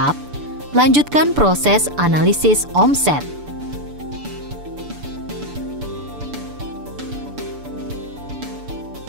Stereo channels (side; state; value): left; late; 6.9 ms